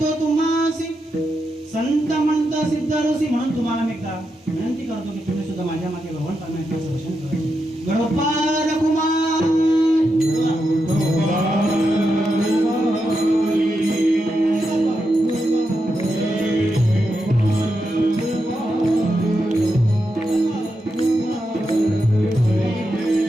तुम्हासी संत म्हणता सिद्ध ऋषी. म्हणून तुम्हाला मी एकदा विनंती करतो की तुम्ही सुद्धा माझ्या मागे भगवान परमेश्वराचं दर्शन करा. गणोपार कुमार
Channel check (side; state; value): both; normal; correlation 0.86